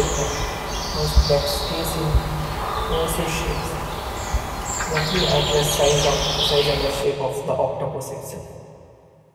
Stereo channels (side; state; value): both; identical; correlation 1.00